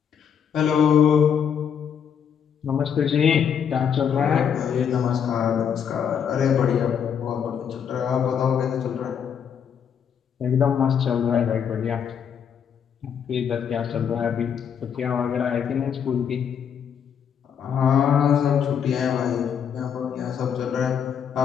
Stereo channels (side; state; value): right; quieter; 7.9 dB